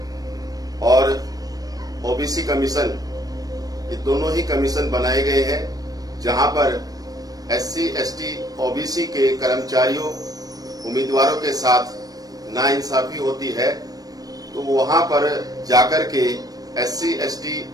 और OBC कमीशन, ये दोनों ही कमीशन बनाए गए हैं, जहां पर SC/ST OBC के कर्मचारियों, उम्मीदवारों के साथ नाइंसाफी होती है, तो वहां पर जाकर के SC/ST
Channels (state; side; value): late; left; 0.18 ms